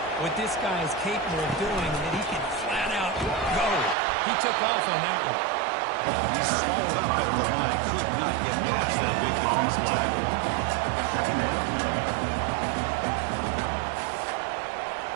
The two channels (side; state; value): left; drops out; at 4.0 s